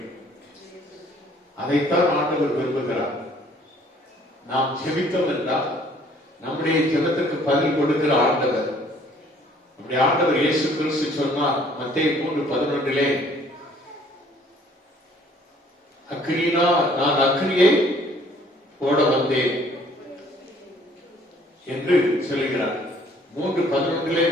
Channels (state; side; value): normal; both; correlation 0.58